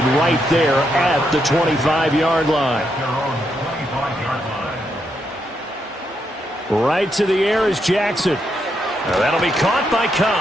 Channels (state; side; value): normal; both; correlation 0.80